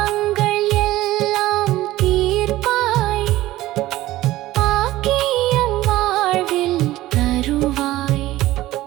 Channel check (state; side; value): quieter; left; 16.2 dB